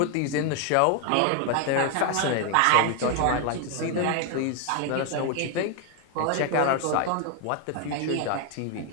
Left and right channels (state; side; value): different; both; correlation 0.01